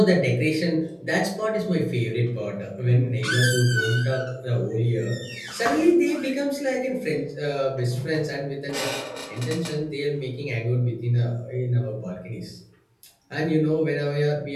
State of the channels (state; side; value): identical; both; correlation 1.00